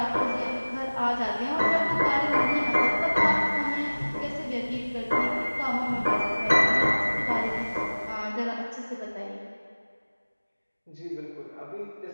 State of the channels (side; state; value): both; inverted; correlation -1.00